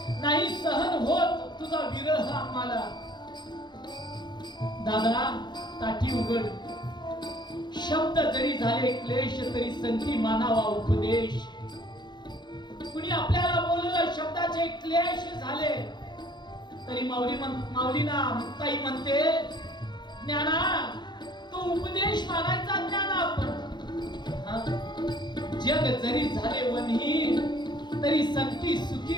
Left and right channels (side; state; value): right; late; 0.21 ms